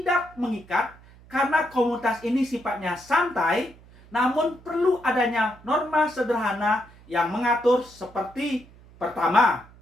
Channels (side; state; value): right; noise; hum, 24 dB below the sound